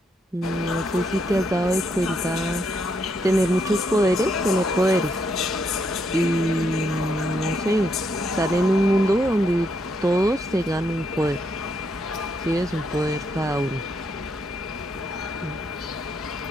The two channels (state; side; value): normal; both; correlation 0.77